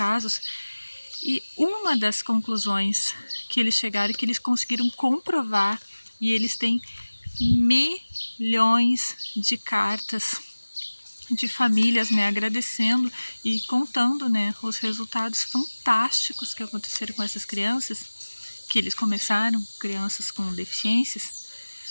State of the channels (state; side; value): inverted; both; correlation -1.00